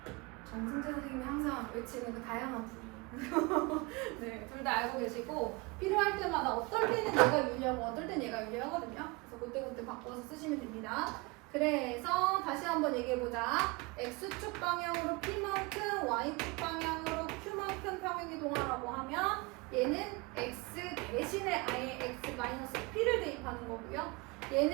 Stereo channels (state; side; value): quieter; left; 25.9 dB